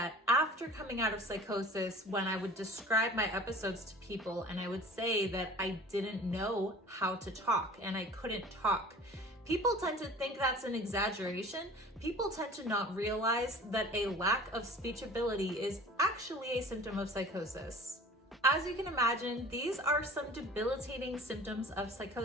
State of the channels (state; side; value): normal; both; correlation 0.43